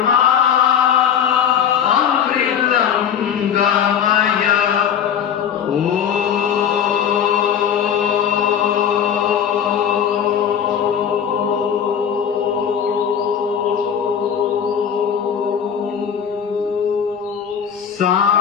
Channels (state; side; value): quieter; right; 8.4 dB